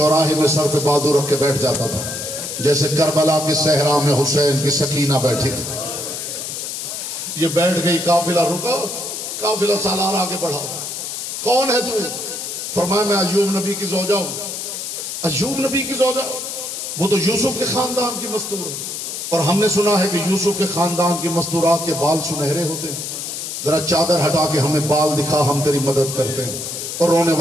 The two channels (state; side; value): noise; left; hiss, 6 dB below the sound